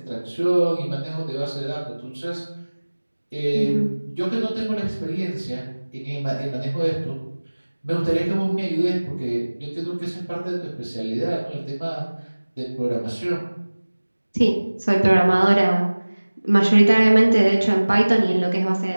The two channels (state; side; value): inverted; both; correlation -1.00